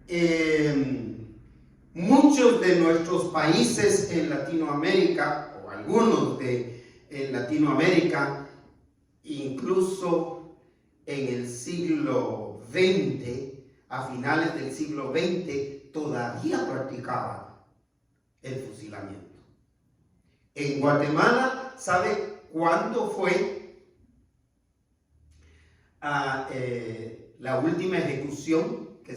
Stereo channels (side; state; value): both; identical; correlation 1.00